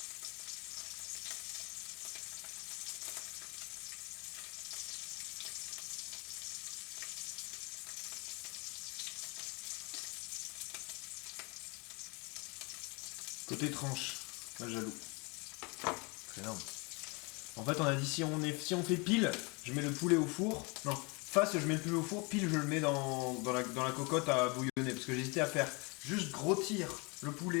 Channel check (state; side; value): quieter; right; 29.5 dB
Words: Côté tranche, pas jaloux. C'est énorme. En fait, on a dit si on fait pile, je mets le poulet au four. Non, face, je mets le poulet au four, pile, je le mets dans la cocotte à bouillonner. Parce que j'hésitais à faire juste rôtir le